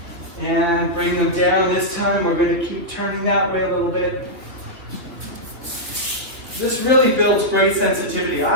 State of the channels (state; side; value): late; left; 3.5 ms